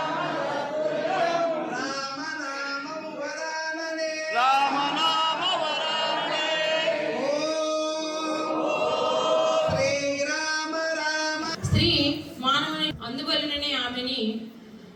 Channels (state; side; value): identical; both; correlation 1.00